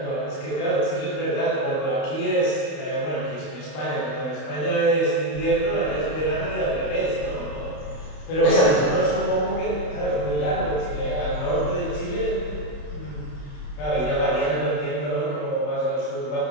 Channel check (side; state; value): right; late; 31 ms